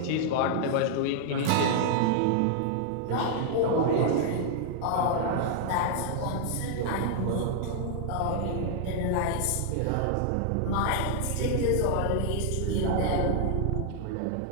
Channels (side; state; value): both; different; correlation -0.01